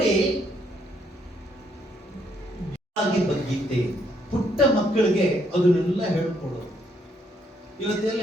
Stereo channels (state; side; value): normal; both; correlation 0.72